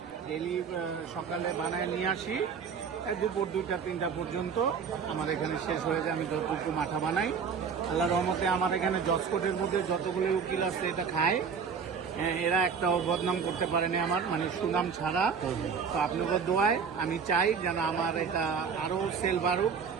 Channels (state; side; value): quieter; left; 6.2 dB